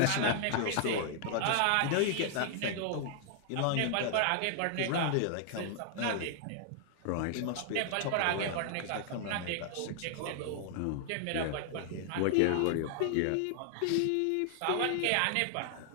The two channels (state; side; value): different; both; correlation 0.00